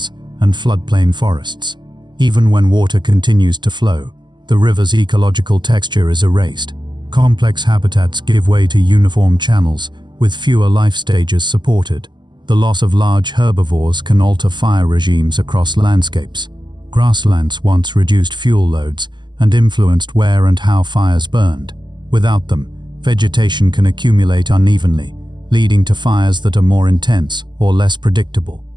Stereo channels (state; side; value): late; left; 0.21 ms